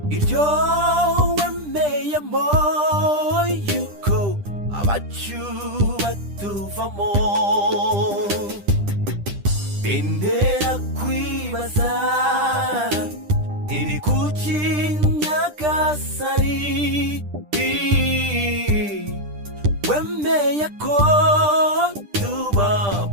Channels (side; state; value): left; late; 10 ms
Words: iryo wemeyemo yuko abacu batuvamo, bintera kwibaza iri kuki Nyagasani wemeye ko